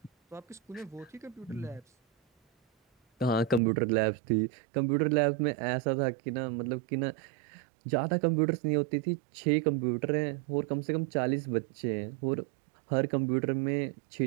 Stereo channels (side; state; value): left; drops out; at 3.6 s